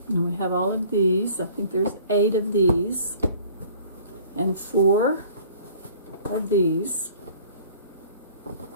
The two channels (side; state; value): both; inverted; correlation -0.51